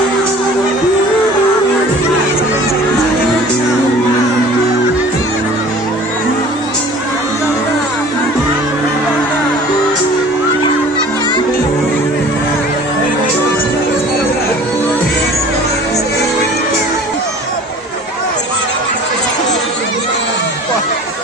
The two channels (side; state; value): both; normal; correlation 0.46